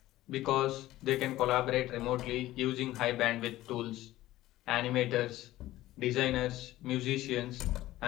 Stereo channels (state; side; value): quieter; right; 15.8 dB